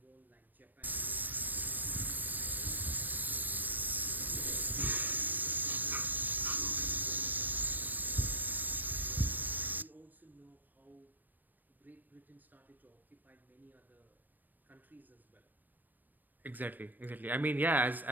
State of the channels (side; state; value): left; late; 0.089 ms